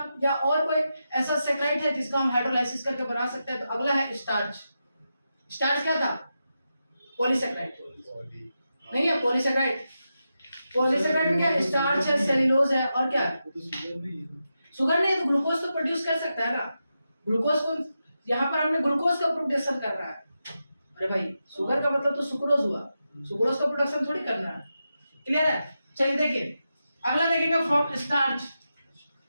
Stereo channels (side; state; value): both; inverted; correlation -0.89